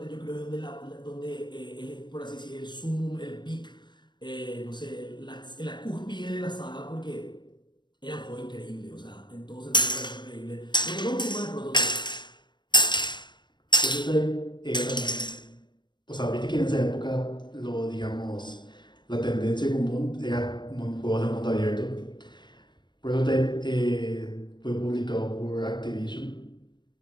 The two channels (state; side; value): late; right; 0.22 ms